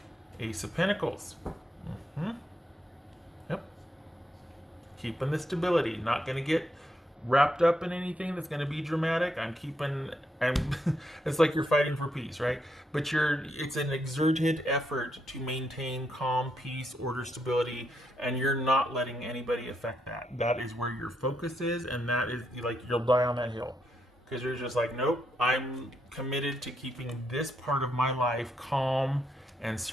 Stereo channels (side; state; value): both; normal; correlation 0.79